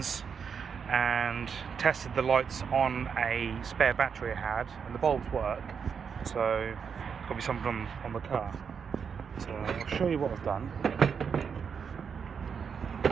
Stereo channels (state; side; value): quieter; left; 6.6 dB